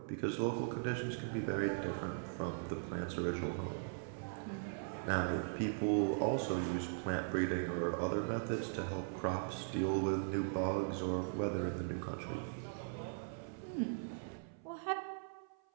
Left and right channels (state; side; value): silent; left; 51 dB below the other